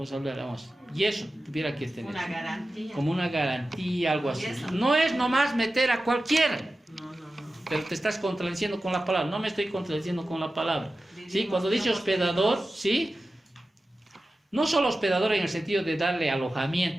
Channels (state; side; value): normal; both; correlation 0.94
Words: hablará más. Y eso tuviera que tener. Una garantía. Como una garantía, algo así. No es nomás meter a cualquiera. No. Pero te estás contradiciendo con la palabra. No me estoy contradiciendo con la palabra. ¿Sí? Cuando dice hospedador, ¿sí? No solo hospedador en el sentido de darle